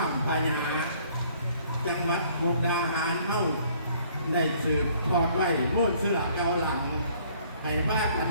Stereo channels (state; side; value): inverted; both; correlation -0.59